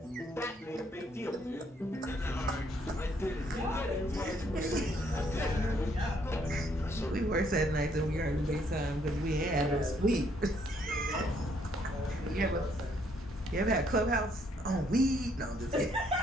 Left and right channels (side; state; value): both; normal; correlation 0.68